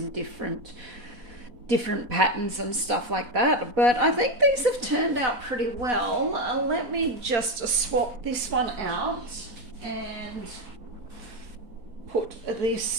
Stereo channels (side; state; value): left; late; 4.1 ms